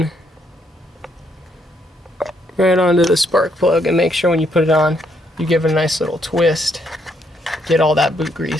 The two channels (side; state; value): both; normal; correlation 0.73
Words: right onto the spark plug, and make sure when you put it on, you give it a nice little twist. Get all that boot